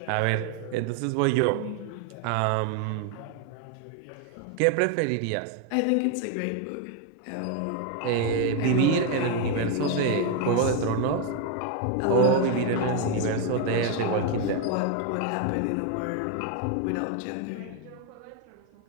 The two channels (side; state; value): both; different; correlation 0.01